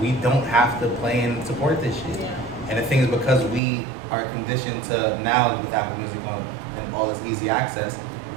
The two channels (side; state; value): left; drops out; at 3.6 s